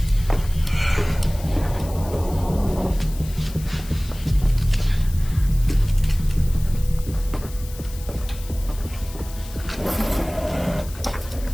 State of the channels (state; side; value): noise; left; hiss, 17 dB below the sound